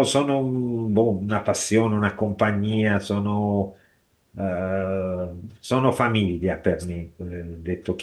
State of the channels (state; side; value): identical; both; correlation 1.00